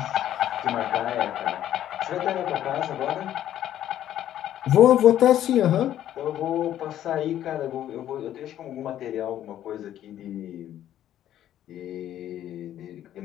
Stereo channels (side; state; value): right; quieter; 11.7 dB